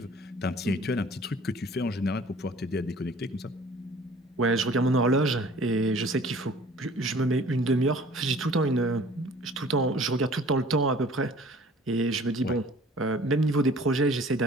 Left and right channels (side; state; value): both; normal; correlation 0.50